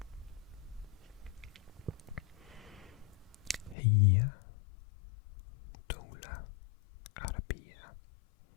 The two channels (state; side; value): drops out; right; at 3.8 s